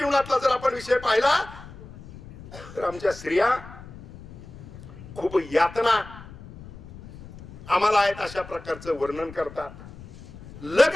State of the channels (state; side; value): noise; left; rumble, 17 dB below the sound